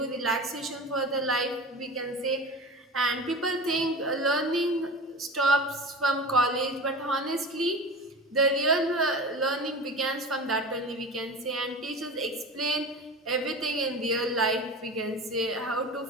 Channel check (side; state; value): both; normal; correlation 0.32